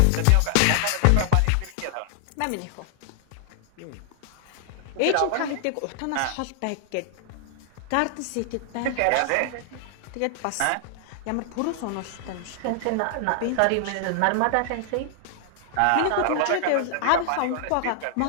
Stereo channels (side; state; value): both; different; correlation 0.00